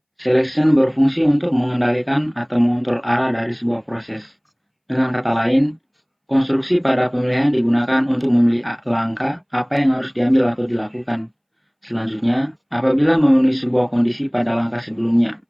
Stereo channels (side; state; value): both; identical; correlation 1.00